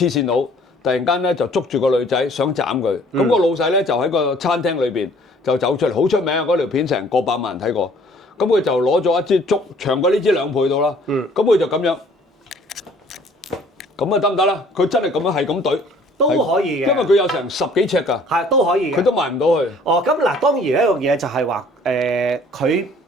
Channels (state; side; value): normal; both; correlation 0.56